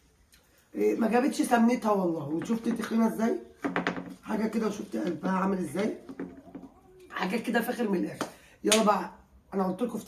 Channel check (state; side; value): identical; both; correlation 1.00